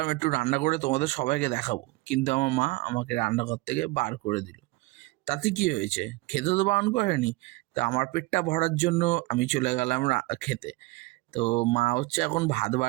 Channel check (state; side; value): quieter; left; 21.9 dB